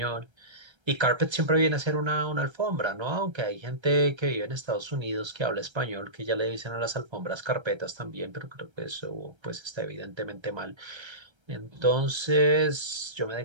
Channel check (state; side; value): late; left; 1.3 ms